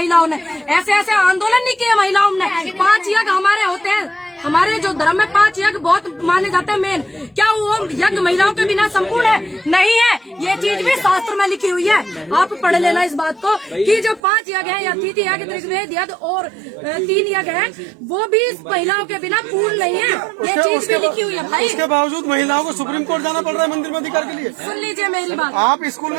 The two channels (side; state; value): left; drops out; at 14.2 s